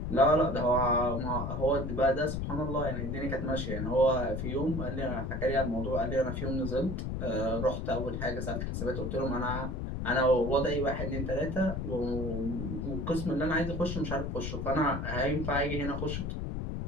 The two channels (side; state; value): left; noise; rumble, 3 dB below the sound